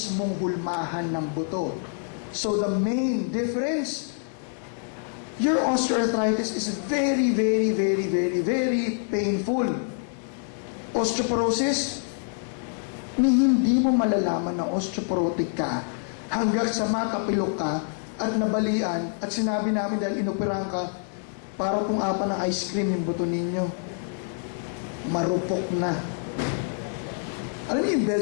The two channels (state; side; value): silent; right; 61 dB below the other